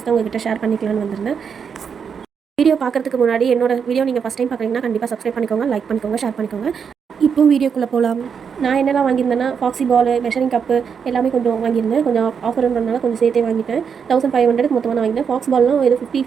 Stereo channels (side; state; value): left; quieter; 6.7 dB